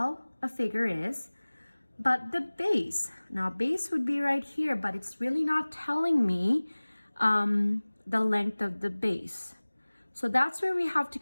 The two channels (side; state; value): both; inverted; correlation -1.00